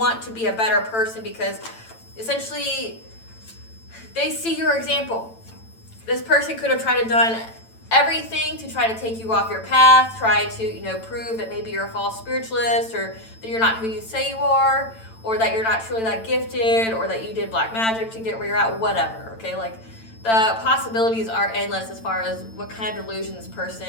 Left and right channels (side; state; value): right; late; 8.9 ms